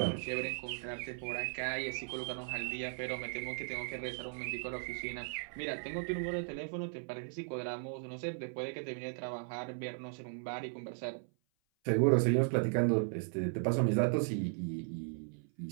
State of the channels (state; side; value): silent; left; 53 dB below the other